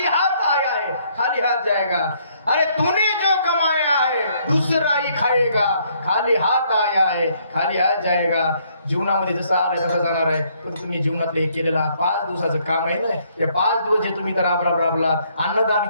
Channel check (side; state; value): both; inverted; correlation -0.68